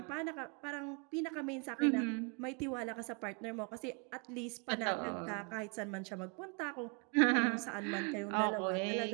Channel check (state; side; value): quieter; left; 34.1 dB